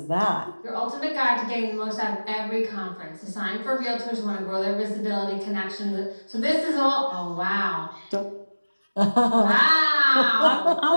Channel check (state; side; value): inverted; both; correlation -1.00